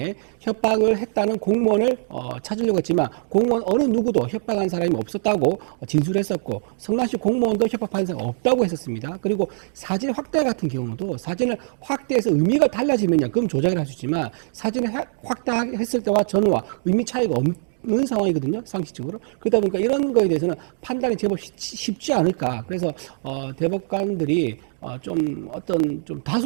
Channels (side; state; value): left; silent; digital silence